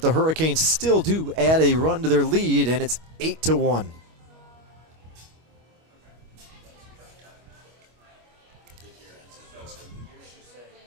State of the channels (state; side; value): late; left; 25 ms